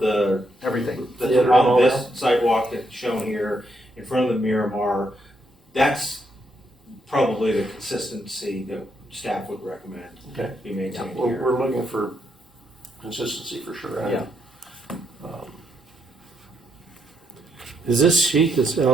Everything. that's Theater and on all this sidewalk that's shown here, in front of the Miramar. That's probably the consistency that staff would recommend Okay. be maintained Well, here. we're looking for consistency for sure. and, Yeah. Is this sheet, this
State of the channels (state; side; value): normal; both; correlation 0.77